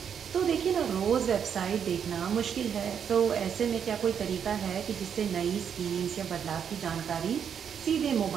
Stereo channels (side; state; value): left; quieter; 7.8 dB